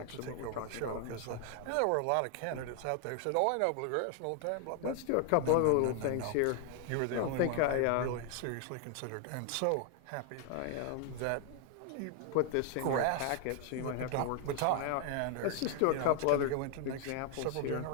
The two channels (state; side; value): different; both; correlation 0.00